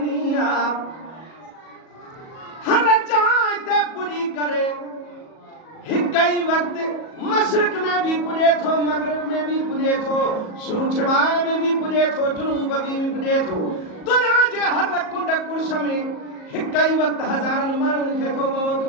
आहे हर जाइ ते पुॼी करे हिक ई वक़्तु मशरिक़ में भी पुॼे थो मग़रिब में भी पुॼे थो शुमाल में भी पुॼे थो जुनूब में भी पुॼे थो दुनिया जे हर कुंड कुर्श में हिक ई वक़्तु हज़ारनि माण्हुनि खे थो मौत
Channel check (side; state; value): right; late; 37 ms